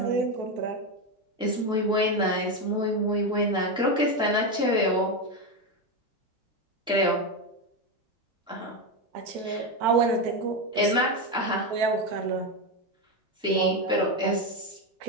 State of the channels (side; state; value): both; normal; correlation 0.12